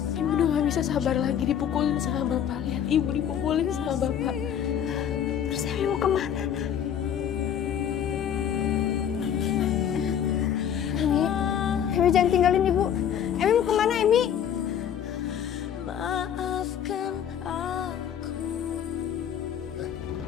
Ibu udah gak bisa sabar lagi dipukulin sama bapak. Lihat ibu dipukulin sama bapak. Terus Emi mau kemana? Emi jangan tinggalin ibu. Emi mau kemana, Emi?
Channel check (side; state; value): right; quieter; 9.0 dB